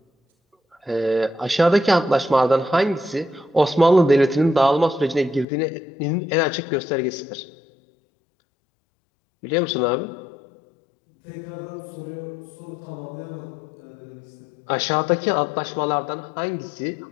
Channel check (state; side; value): drops out; right; at 5.5 s